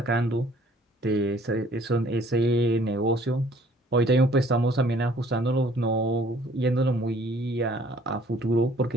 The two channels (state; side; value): normal; both; correlation 0.57